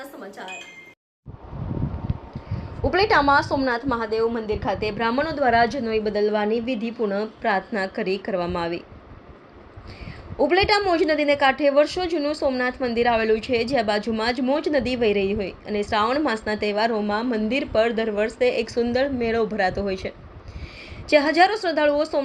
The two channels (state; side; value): identical; both; correlation 1.00